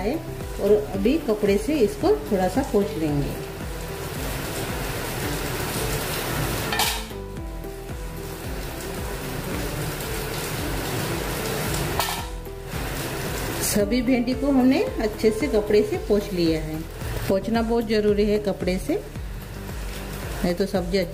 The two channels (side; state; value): both; identical; correlation 1.00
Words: और अभी कपड़े से इसको थोड़ा सा पोंछ लेंगे। सभी भिंडी को हमने अच्छे से कपड़े से पोंछ लिया है। पोंछना बहुत ज़रूरी है कपड़े से, नहीं तो सब्जी